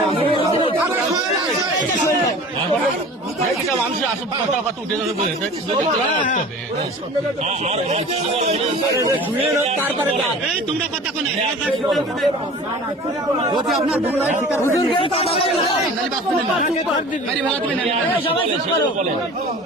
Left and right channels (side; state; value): both; normal; correlation 0.41